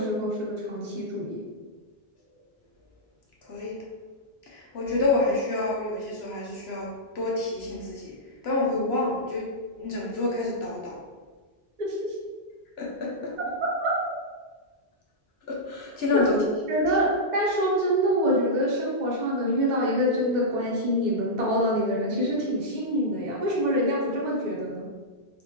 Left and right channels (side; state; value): both; normal; correlation -0.10